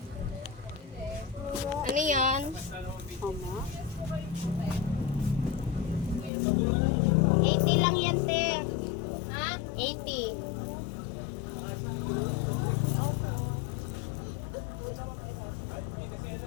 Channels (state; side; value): drops out; right; at 6.3 s